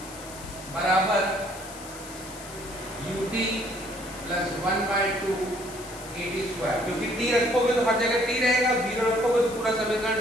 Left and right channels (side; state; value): left; noise; hiss, 15 dB below the sound